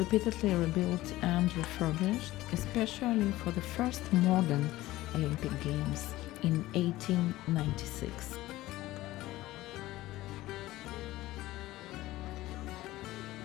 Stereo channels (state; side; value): quieter; right; 17.0 dB